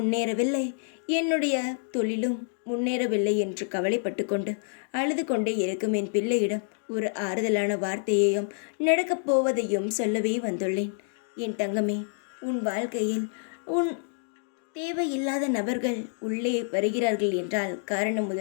என்னுடைய தொழிலும் முன்னேறவில்லை என்று கவலைப்பட்டு கொண்டு அழுது கொண்டே இருக்கும் என் பிள்ளையிடம் ஒரு ஆறுதலான வார்த்தையையும் நடக்கப் போவதையும் சொல்லவே வந்துள்ளேன். என் தங்கமே, உன் வாழ்க்கையில் உன் தேவையில்லாத நபர்கள் உள்ளே வருகிறார்கள் என்றால்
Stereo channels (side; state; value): right; silent; digital silence